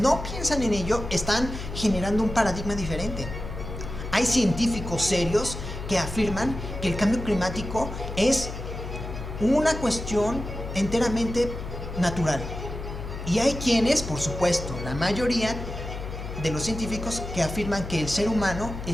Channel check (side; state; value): left; noise; hum, 8 dB below the sound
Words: piensan en ello, están generando un paradigma diferente. Hay científicos serios que afirman que el cambio climático es una cuestión enteramente natural. Y hay quienes, por supuesto, la mayoría de los científicos, que afirman que el ser humano